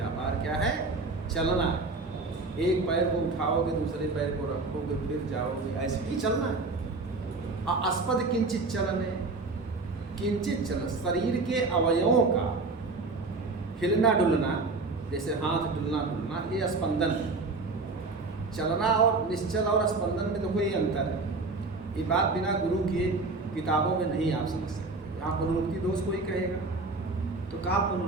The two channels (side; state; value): left; quieter; 3.6 dB